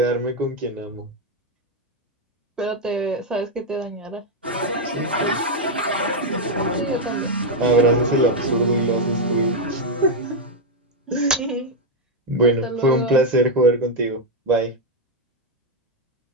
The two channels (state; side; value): normal; both; correlation 0.01